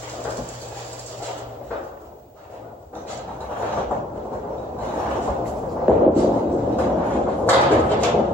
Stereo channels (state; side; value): normal; both; correlation 0.61